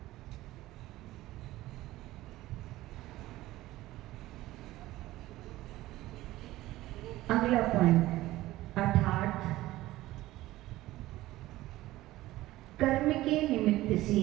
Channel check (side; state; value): left; quieter; 16.7 dB